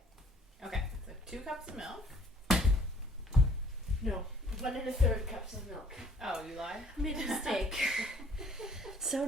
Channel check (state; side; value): normal; both; correlation 0.57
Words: Okay, so 2 cups of milk. No, 1 1/3 cups of milk. Oh, you lied? I made a mistake. So